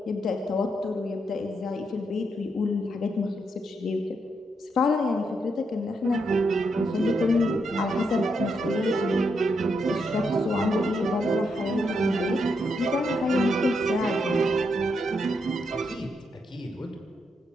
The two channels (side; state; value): both; normal; correlation 0.80